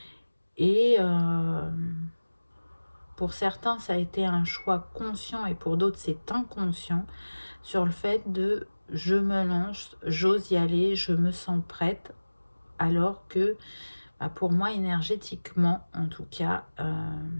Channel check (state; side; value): inverted; both; correlation -1.00